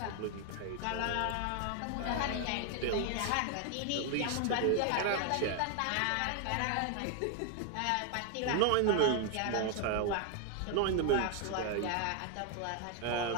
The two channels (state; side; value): different; both; correlation 0.00